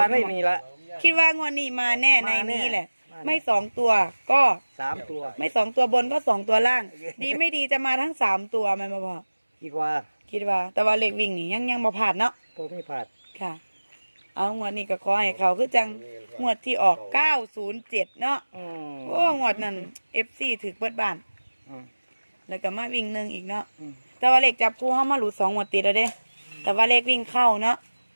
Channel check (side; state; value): both; inverted; correlation -1.00